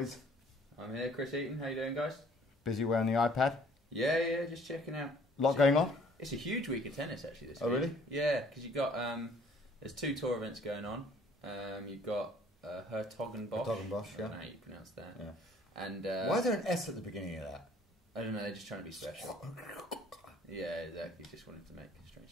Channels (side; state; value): both; normal; correlation 0.57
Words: I'm here, Chris Eaton. How you doing, guys? Busy wearing the iPad. Yeah, just checking out. Lot going on. It's a huge week of tennis, actually. This week. Oh, really? Yeah, Yeah, because you've got there's 2 tour events going on. You've got Hertogenbosch. Hertogenbosch, yeah. I don't know how you pronounce that. Yeah. And why is there an S at the beginning of that? I don't know. They're just trying to be special. Yeah, exactly. Just wanted to make